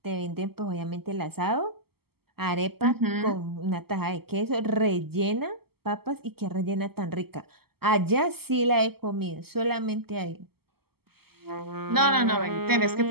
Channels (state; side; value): late; left; 0.96 ms